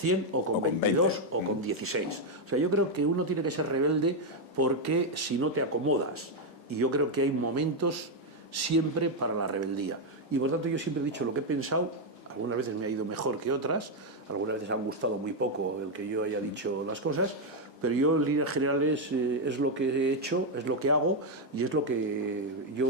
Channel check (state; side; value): normal; both; correlation 0.02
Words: o con 22 o con 16. O sea, yo creo que uno tiene que ser rebelde porque si no te acomodas. Y yo creo que hay momentos siempre para la rebeldía. Y por tanto yo siempre he dicho lo que he pensado. Algunas veces me ha ido mejor que otras, algunas veces han gustado muy poco el que yo haya dicho las cosas, pero yo en líneas generales es lo que he hecho, es lo que hago y es lo que